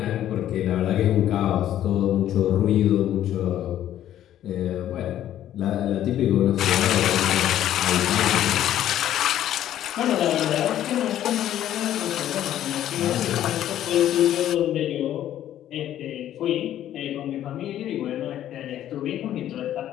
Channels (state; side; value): quieter; right; 11.8 dB